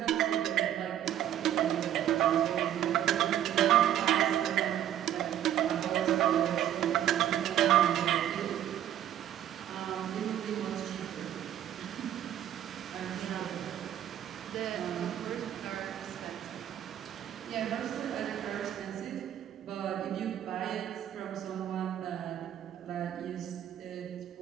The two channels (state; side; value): quieter; left; 11.2 dB